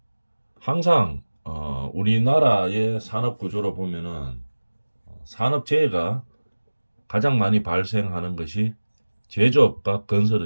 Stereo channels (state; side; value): inverted; both; correlation -1.00